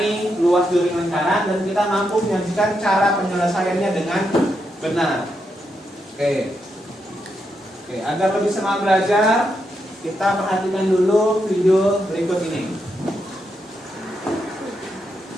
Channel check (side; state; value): both; normal; correlation 0.82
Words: luas juring lingkaran, dan kita mampu menyajikan cara penyelesaiannya dengan benar. Oke, agar lebih semangat belajar, kita perhatikan dulu video berikut ini.